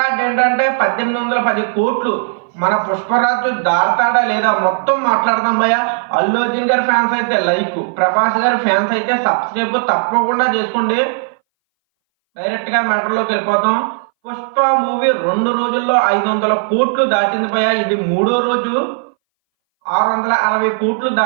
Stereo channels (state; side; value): silent; left; 62 dB below the other